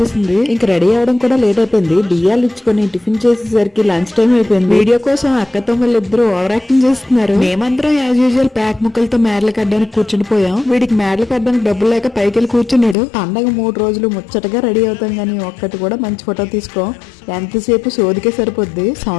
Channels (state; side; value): drops out; right; at 13.0 s